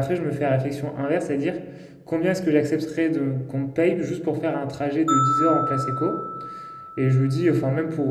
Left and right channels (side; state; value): both; identical; correlation 1.00